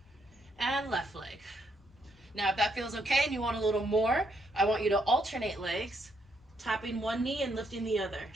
And left leg. Now, if that feels okay and you want a little more, I want you to alternate legs. Tapping one knee and lifting the other.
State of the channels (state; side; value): normal; both; correlation 0.75